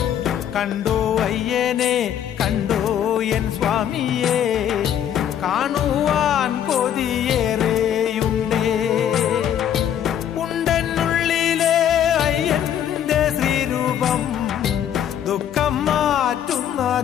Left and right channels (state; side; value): quieter; right; 9.9 dB